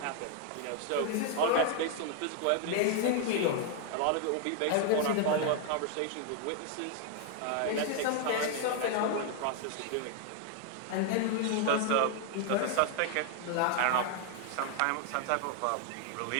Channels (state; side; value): different; both; correlation 0.00